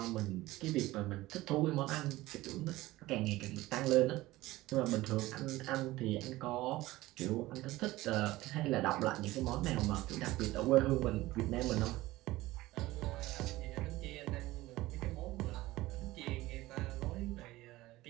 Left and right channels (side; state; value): left; quieter; 18.0 dB